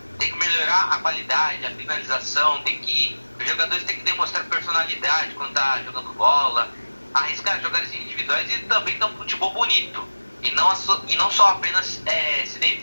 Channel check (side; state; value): both; inverted; correlation -1.00